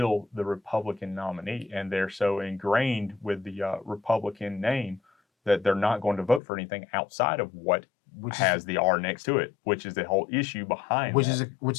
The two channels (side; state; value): right; drops out; at 6.4 s